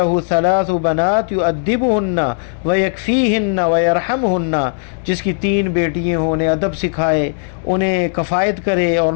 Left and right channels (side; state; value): right; silent; digital silence